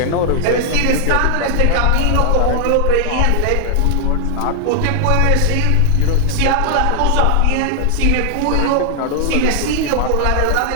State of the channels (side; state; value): both; different; correlation 0.00